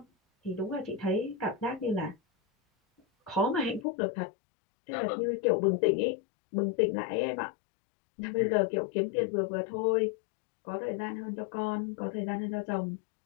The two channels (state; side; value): drops out; right; at 3.9 s